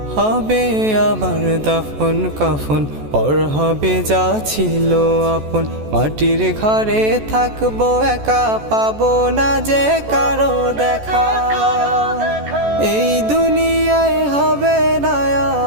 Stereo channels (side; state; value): left; late; 14 ms